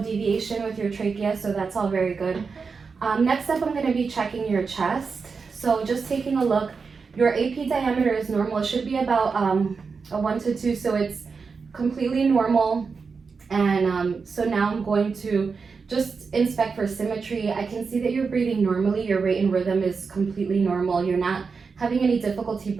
with your trachea, so that's all very good. Next up, I'm going to be checking your chest. So just taking a look. Your AP diameter is normal. It should be about a 1 to 2, so it's completely normal. And so now I'm going to just inspect for symmetry. I can see that you're breathing normally. Your rate and rhythm is completely normal. You're not having any difficulty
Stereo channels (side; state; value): left; quieter; 5.1 dB